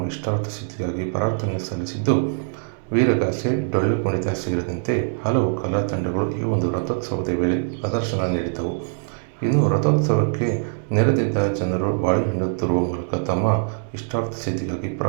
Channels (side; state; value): left; silent; 64 dB below the other